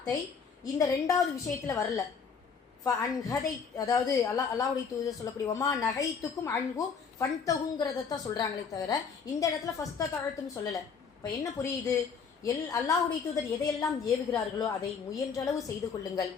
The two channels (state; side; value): quieter; right; 5.9 dB